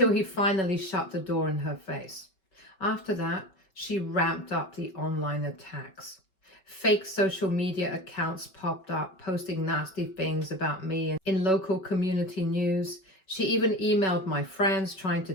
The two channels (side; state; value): right; late; 5.2 ms